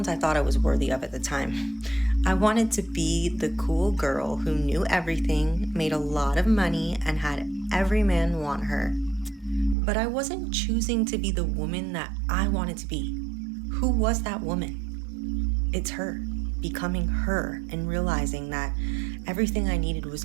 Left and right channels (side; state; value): left; drops out; at 9.8 s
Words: I thought I was worthy of at the time. I wanted to be the cool girl who knew everything, made a lot of money, and had every man want her. But I wasn't choosing to be the woman that I wanted to be. Who was that woman? It's her, becoming her and realizing that everything I needed was